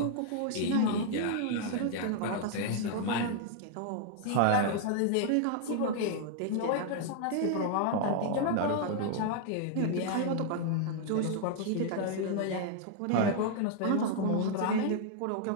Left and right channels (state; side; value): different; both; correlation -0.01